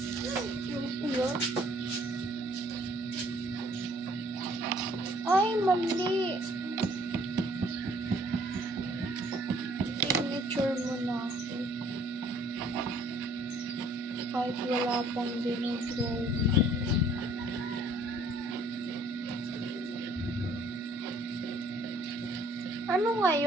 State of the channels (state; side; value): normal; both; correlation 0.60